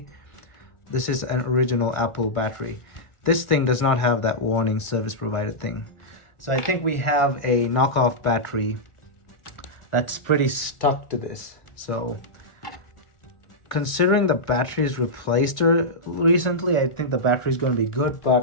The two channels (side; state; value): right; late; 1.6 ms